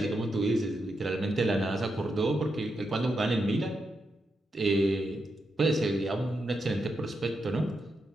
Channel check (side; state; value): both; normal; correlation 0.84